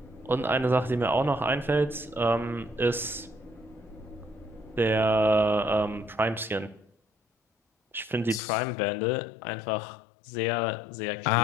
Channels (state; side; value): drops out; right; at 8.4 s